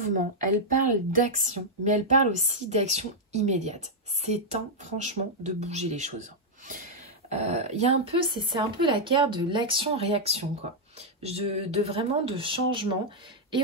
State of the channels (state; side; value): normal; both; correlation -0.03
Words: elle parle d'action, mais elle parle aussi d'action immédiate. C'est temps, franchement, de bouger les choses. Il y a un peu, c'est un peu la carte de l'action-réaction, quoi. Vraiment de changement et